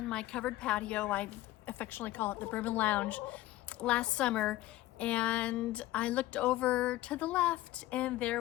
my covered patio, I affectionately call it the Bourbon Lounge, last summer, and I looked over to the left and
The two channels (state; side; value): quieter; right; 16.3 dB